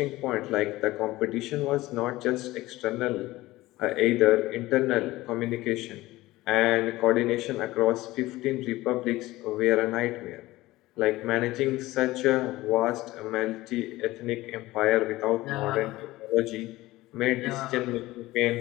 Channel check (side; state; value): right; quieter; 18.2 dB